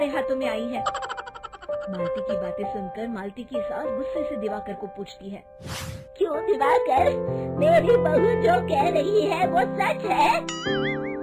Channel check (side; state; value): both; identical; correlation 1.00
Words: हाथों में आई है। मालती की बातें सुनकर मालती की सास गुस्से से दिवाकर को पूछती है, क्यों दिवाकर, मेरी बहू जो कह रही है वो सच है?